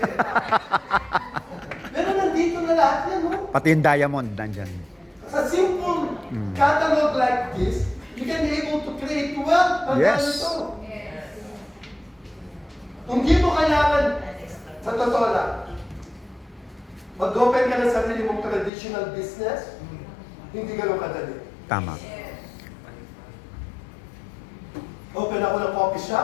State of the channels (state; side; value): drops out; right; at 18.7 s